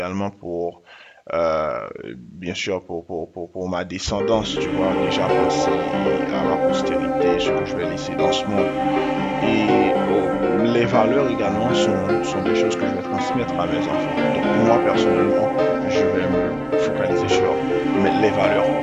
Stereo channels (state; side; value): identical; both; correlation 1.00